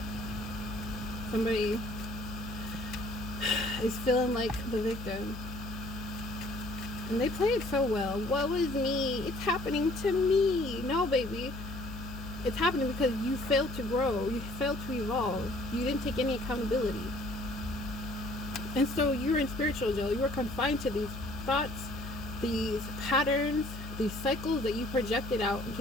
Somebody is feeling like the victim. And they play it so well. Woe is me. It's happening to me. No, baby. It's happening because you failed to grow. You failed to evolve. You didn't take any accountability. And so you're in spiritual jail. You are confined to these thoughts, these patterns, these cycles that you projected out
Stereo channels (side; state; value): left; noise; hum, 10 dB below the sound